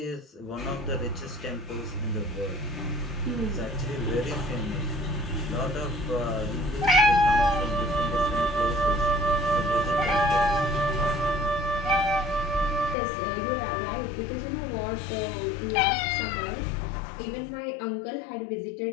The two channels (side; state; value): right; drops out; at 13.0 s